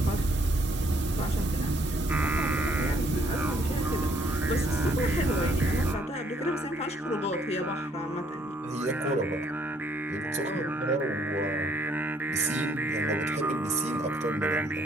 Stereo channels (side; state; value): both; normal; correlation 0.65